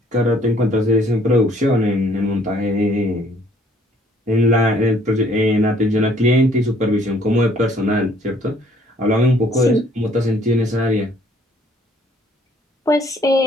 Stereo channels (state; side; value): normal; both; correlation 0.61